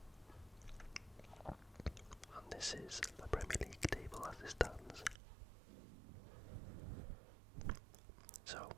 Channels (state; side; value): drops out; left; at 5.2 s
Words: and this is the Premier League table as it stands. So,